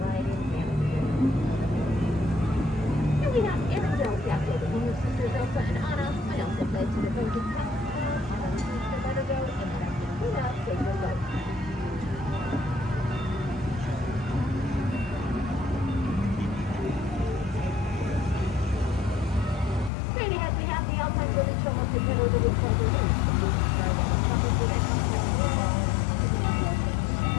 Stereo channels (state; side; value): drops out; right; at 19.9 s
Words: in Canada. Here we have Arendelle Castle, the home of sisters Elsa and Anna, and Elsa fled to the Frozen Palace, Anna refused to let her go, and Captain Luna saved her life.